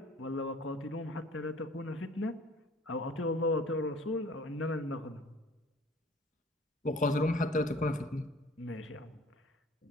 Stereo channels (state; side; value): normal; both; correlation 0.50